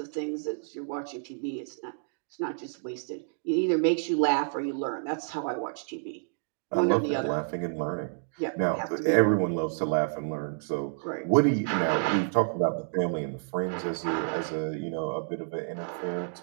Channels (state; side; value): silent; left; digital silence